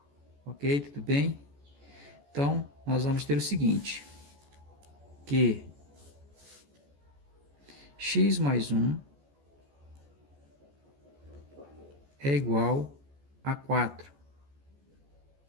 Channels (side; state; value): left; late; 14 ms